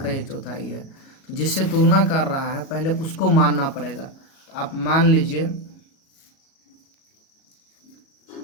1/4 है। तो जिससे तुलना कर रहा है पहले उसको मानना पड़ेगा। तो आप मान लीजिए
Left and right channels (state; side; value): late; right; 37 ms